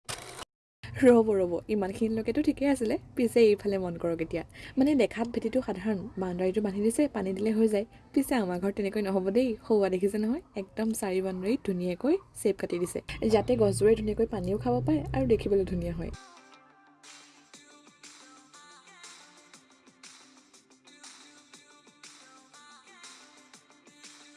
ৰ'ব ইমানখিনিলৈকেতো ঠিকেই আছিলে, পিছে এইফালে মন কৰক এতিয়া। মানে দেখাত ভেটিটো সাধাৰণ, বাউণ্ডাৰীটো বান্ধি দিছে, পানী দিলে হৈ যায়। পিছে আমাৰ ঘৰত তেনেকৈ নহ'ব দেই, সৌৱা দেখিছে নহয়, একদম 4 বাউণ্ডাৰীত ধুনীয়াকৈ চেপ কাটি দিছে যাতে গছবোৰে ধুনীয়াকৈ পানীও খাব পাৰে আৰু দেখিবলৈ ধুনীয়া হয়।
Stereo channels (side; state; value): both; identical; correlation 1.00